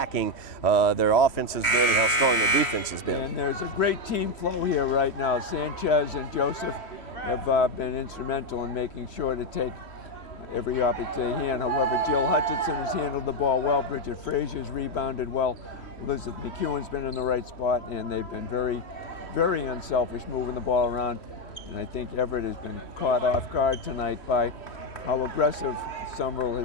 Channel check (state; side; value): late; right; 3.1 ms